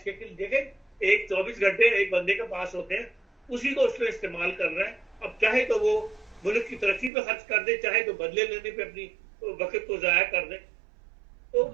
کے کہ دیکھیں ایک 24 گھنٹے ایک بندے کے پاس ہوتے ہیں، اسی کو اس نے استعمال کرنا ہے۔ اب چاہے تو وہ ملک کی ترقی پہ خرچ کر دے، چاہے تو بدلے لینے پہ اپنی وقت کو ضائع کر دے۔ تو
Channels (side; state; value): left; drops out; at 7.1 s